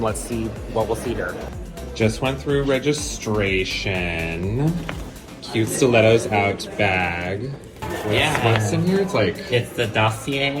let's see what we'll see here. Just went through registration. Cute Stilettos Out bag. What's in here? It's the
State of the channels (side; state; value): both; identical; correlation 1.00